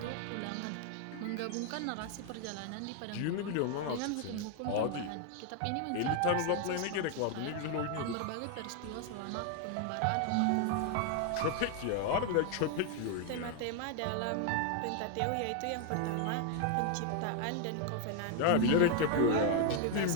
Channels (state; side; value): different; both; correlation 0.01